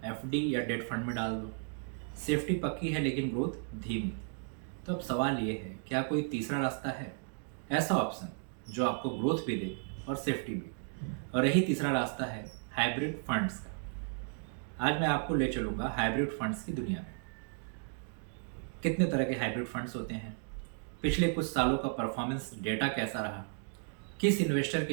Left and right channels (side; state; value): left; silent; 55 dB below the other